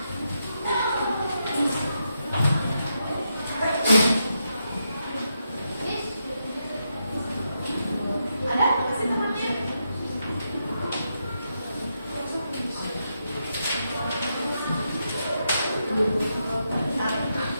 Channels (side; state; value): both; inverted; correlation -0.83